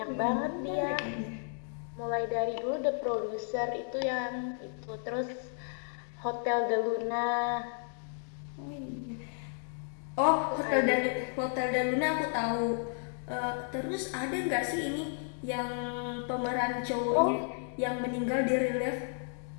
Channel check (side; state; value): right; silent; 56 dB below the other